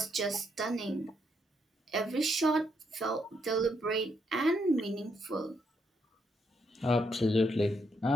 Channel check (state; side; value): normal; both; correlation 0.76